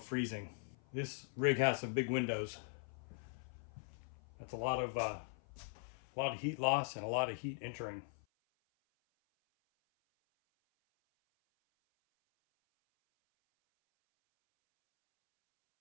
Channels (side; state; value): right; silent; 50 dB below the other